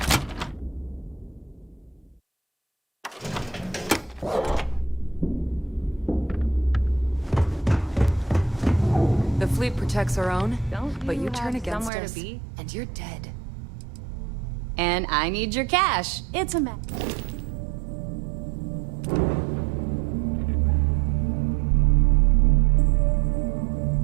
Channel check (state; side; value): drops out; left; at 11.9 s